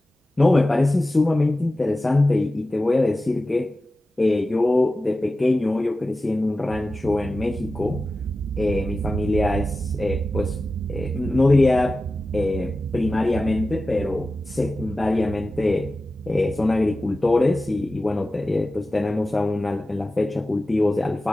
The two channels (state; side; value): normal; both; correlation 0.95